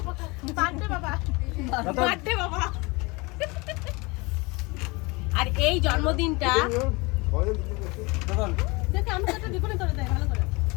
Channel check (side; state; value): right; quieter; 25.8 dB